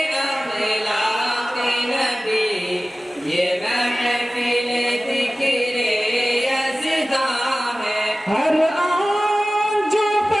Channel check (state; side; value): normal; both; correlation 0.96